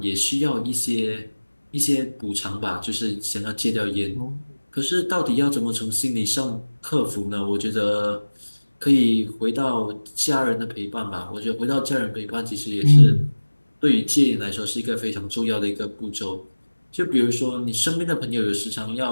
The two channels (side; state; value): both; inverted; correlation -1.00